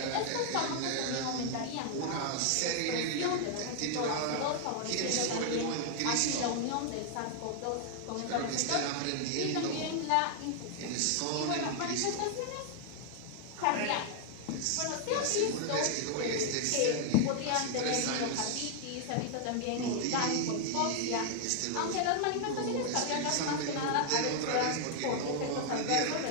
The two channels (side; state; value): both; different; correlation 0.00